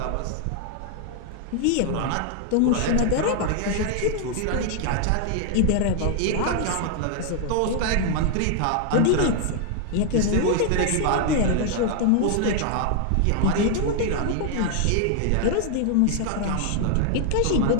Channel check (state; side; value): different; both; correlation 0.00